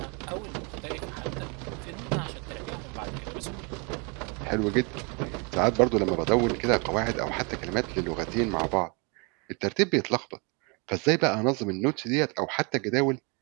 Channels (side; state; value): left; quieter; 31.7 dB